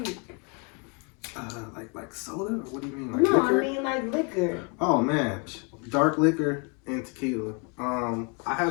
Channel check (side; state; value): right; quieter; 34.6 dB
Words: Like soda? Or what do you mean? Like no, liquor? I mean like liquor. Oh man, dark liquor and tequila. I